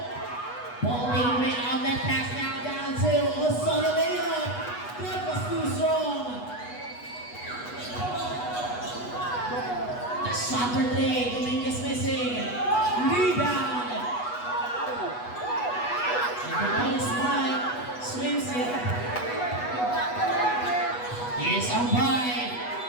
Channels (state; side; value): late; right; 8.2 ms